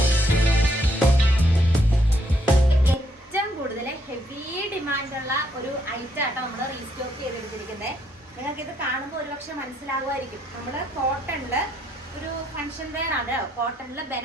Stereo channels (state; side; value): normal; both; correlation 0.72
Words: ഹെവി ഡിമാൻഡുള്ള ഒരു ഐറ്റം ആട്ടോ നമ്മൾ റീസ്റ്റോക്ക് ചെയ്തെടുത്തിരിക്കുന്നത്. നിങ്ങൾക്ക് ഇത് കാണുമ്പോൾ ഒരുപക്ഷെ മനസ്സിലാകുമായിരിക്കും. നമ്മൾ കോട്ടണില് ഒരു ഫംഗ്ഷൻ വെയർ ആണ്. കോട്ടണില്